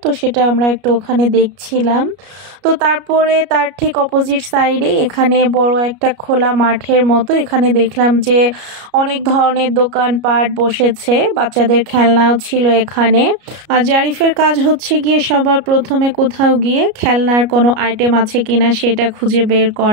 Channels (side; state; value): left; late; 33 ms